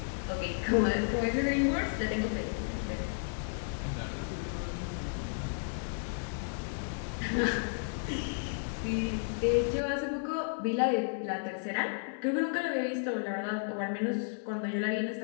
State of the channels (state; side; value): silent; right; 56 dB below the other